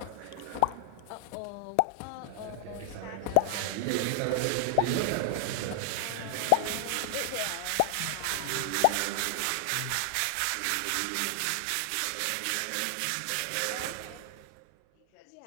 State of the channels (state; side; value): different; both; correlation 0.00